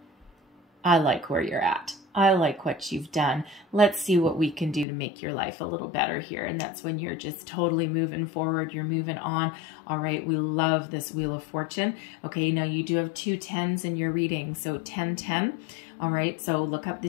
I like where you're at. I like what you've done. Let's see what we can do to make your life a little better here. And that's when you're just totally moving forward. You're moving on. All right. We love this Wheel of Fortune. Okay. Now you do have 2 10s in your reading. So 10-10. All right. So look up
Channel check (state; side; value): drops out; right; at 4.9 s